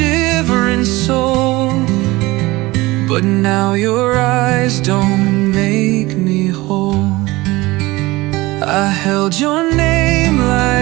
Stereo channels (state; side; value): quieter; left; 20.5 dB